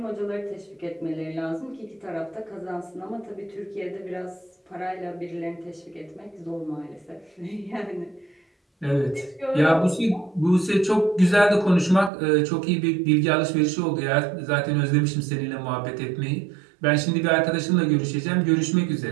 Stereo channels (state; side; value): drops out; left; at 12.1 s